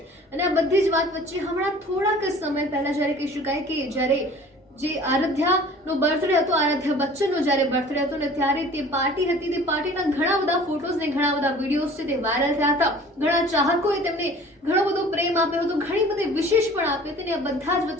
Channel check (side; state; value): both; normal; correlation 0.47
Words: અને આ બધી જ વાત વચ્ચે હમણાં થોડાક સમય પહેલા જ્યારે કહી શકાય કે જ્યારે જે આરાધ્યાનો બર્થડે હતો, આરાધ્યા બચ્ચનનો જ્યારે બર્થડે હતો ને ત્યારે તે પાર્ટી હતી, તે પાર્ટીના ઘણા બધા ફોટોઝ ને ઘણા બધા વિડીયોઝ છે તે વાયરલ થયા હતા. ઘણા ચાહકોએ તેમને ઘણો બધો પ્રેમ આપ્યો હતો, ઘણી બધી વિશેષ પણ આપી હતી. અને આ બધા જ